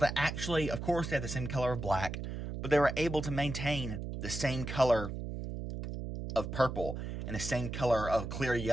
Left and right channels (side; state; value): right; noise; hum, 6 dB below the sound